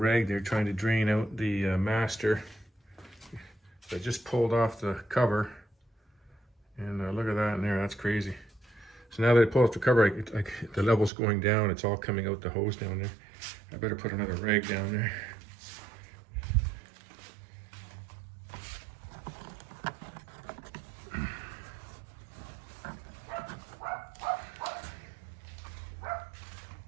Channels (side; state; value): left; drops out; at 11.1 s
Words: there trying to drain out the master. I just pulled off the cover, and look at that in there, that's crazy. So now that I pull off the cover, the level's going down, it's all coming out the hose down there. I better put another rag down there.